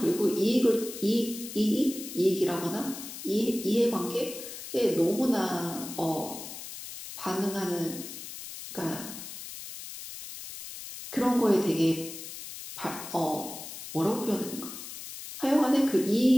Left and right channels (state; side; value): noise; left; hiss, 11 dB below the sound